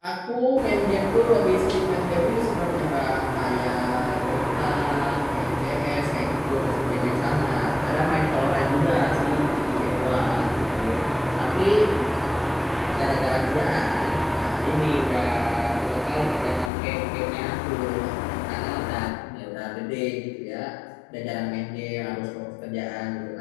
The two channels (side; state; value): right; drops out; at 16.7 s